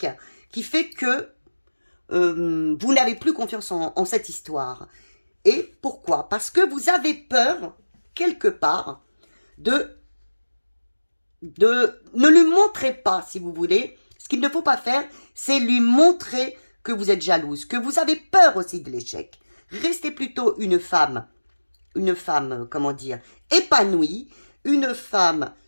qui fait que vous n'avez plus confiance en cette histoire. Et pourquoi? Parce que vous avez peur, quelque part, ne lui montrez pas, si vous voulez. Ce qu'il ne faut pas faire, c'est lui montrer que vous êtes jalouse, que vous avez peur aussi de l'échec. Restez plutôt une femme, comment dire, épanouie, une femme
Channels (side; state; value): both; inverted; correlation -1.00